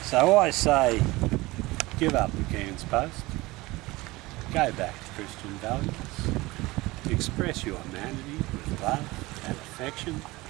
So I say, give up the Cairns Post, go back to Christian values, express your humanity with love and affection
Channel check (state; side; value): quieter; left; 20.9 dB